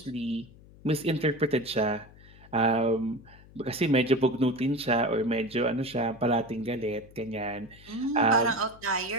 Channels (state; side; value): noise; left; hum, 22 dB below the sound